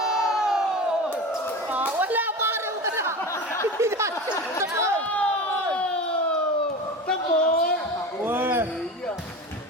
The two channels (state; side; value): normal; both; correlation 0.30